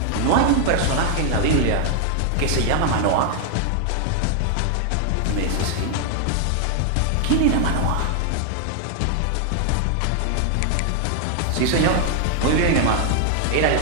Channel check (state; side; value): different; both; correlation 0.00